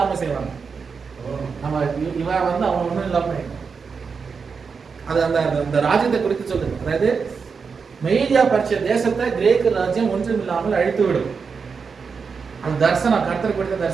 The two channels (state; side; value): quieter; left; 5.5 dB